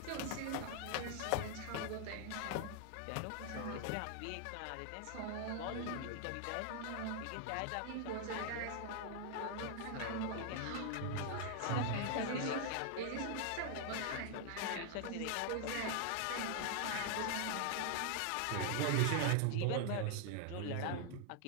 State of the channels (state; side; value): different; both; correlation 0.00